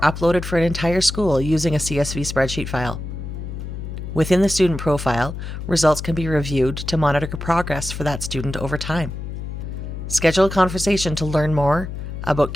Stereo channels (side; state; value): left; noise; hum, 7 dB below the sound